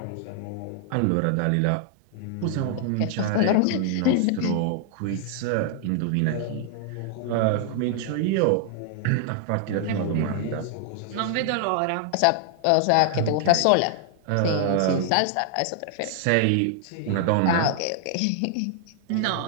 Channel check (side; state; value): both; different; correlation 0.00